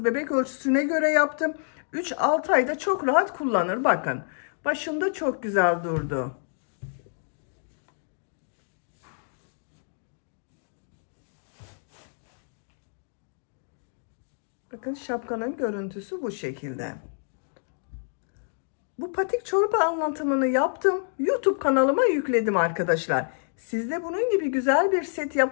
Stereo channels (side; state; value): right; silent; digital silence